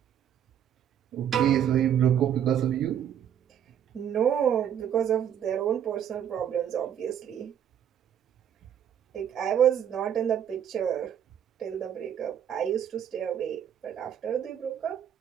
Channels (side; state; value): left; quieter; 9.4 dB